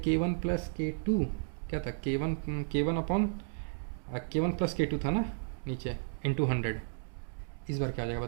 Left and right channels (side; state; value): left; silent; digital silence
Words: प्लस K2 क्या था? K1 upon K1 plus K2 था ना नीचे, इंटू 100। इस बार क्या हो जाएगा